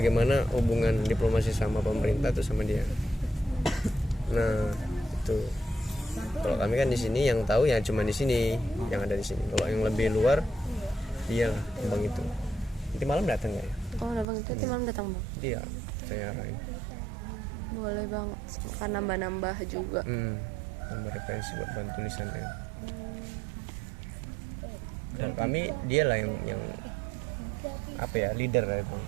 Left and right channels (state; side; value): drops out; left; at 14.2 s